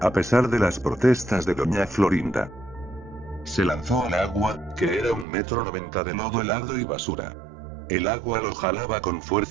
pesar de las protestas de Doña Florinda. se lanzó al agua, que era 1,90 m de lodo helado y basura. El agua lo jalaba con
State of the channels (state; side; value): drops out; left; at 5.2 s